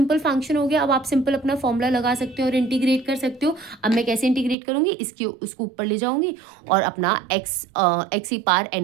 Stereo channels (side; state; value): left; drops out; at 4.5 s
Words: फंक्शन हो गया। अब आप सिंपल अपना फॉर्मूला लगा सकते हो और इंटीग्रेट कर सकते हो। अब मैं कैसे इंटीग्रेट करूंगी, उसको ऊपर ले जाऊंगी और अपना x की पावर